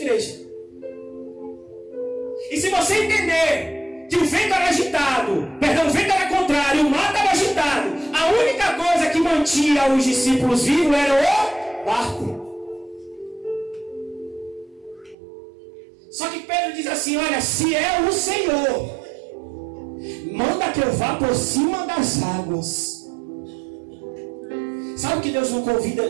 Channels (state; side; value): drops out; left; at 15.2 s